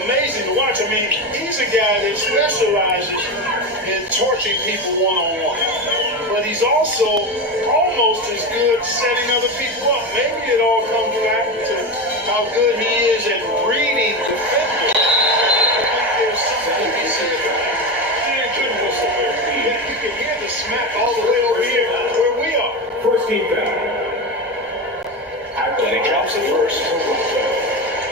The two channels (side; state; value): both; normal; correlation 0.19